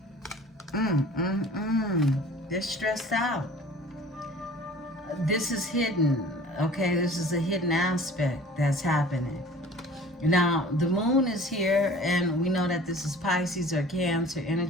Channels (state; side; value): normal; both; correlation 0.46